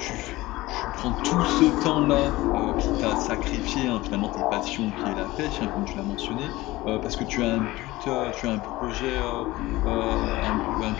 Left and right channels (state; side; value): quieter; right; 18.8 dB